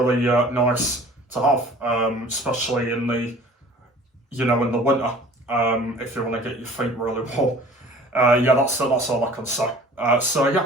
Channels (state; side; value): normal; both; correlation 0.48